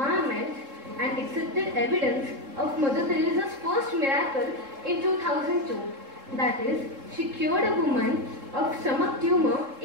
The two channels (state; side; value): late; left; 3.7 ms